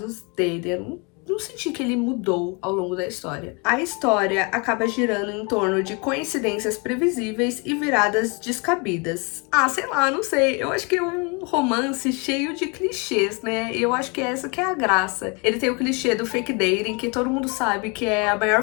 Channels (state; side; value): quieter; right; 31.2 dB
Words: dele. Eu não senti que ele mudou ao longo da história. A história acaba girando em torno de coincidências previsíveis e viradas descabidas. Ah, sei lá, não sei. Eu acho que é um romance cheio de clichês, né? Eu acho que essa que é a graça. Ele tem o clichê do fake dating, que todo mundo sabe que é a maior